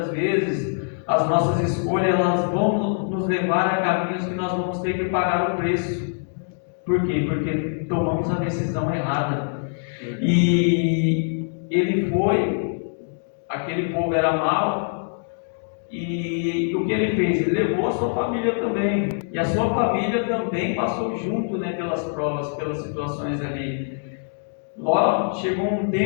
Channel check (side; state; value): right; silent; digital silence